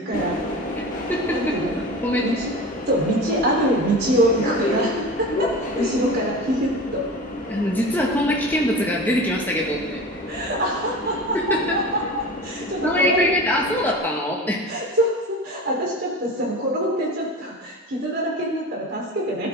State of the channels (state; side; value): normal; both; correlation 0.33